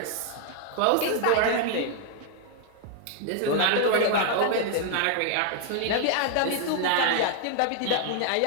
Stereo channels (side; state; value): both; different; correlation 0.00